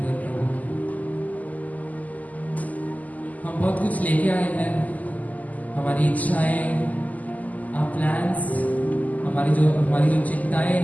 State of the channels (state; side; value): late; right; 0.078 ms